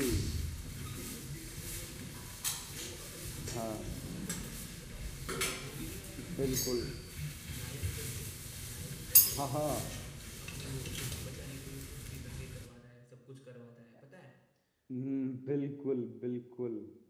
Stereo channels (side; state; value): both; identical; correlation 1.00